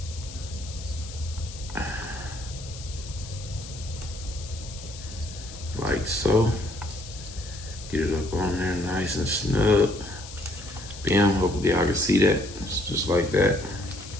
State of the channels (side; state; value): left; noise; hiss, 14 dB below the sound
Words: Like so. Get it up on there nice and snug. Bam, hopefully I can see that. It's just like that.